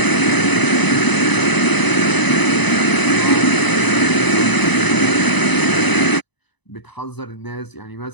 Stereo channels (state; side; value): late; right; 1.0 ms